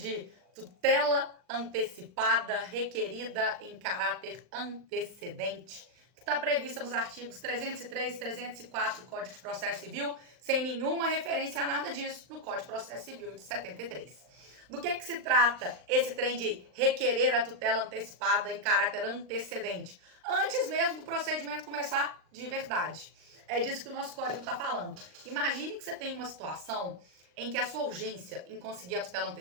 tutela antecipada requerida em caráter antecedente, que está prevista nos artigos 303 e 304 do Código de Processo Civil, sem nenhuma referência a nada disso no Código de Processo Civil de 73. Do que se trata esse trem de requerer a tutela antecipada em caráter antecedente? Antes mesmo do procedimento começar de verdade. É disso que o nosso código está falando. Imagine que você tem uma situação em que a sua urgência em conseguir a tutela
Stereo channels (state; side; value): late; left; 39 ms